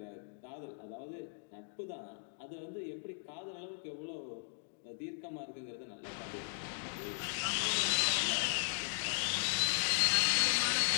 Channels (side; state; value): right; silent; digital silence